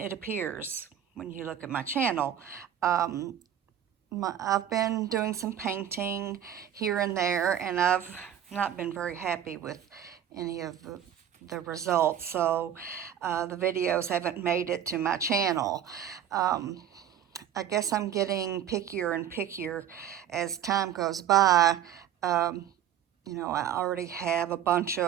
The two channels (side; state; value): left; quieter; 10.0 dB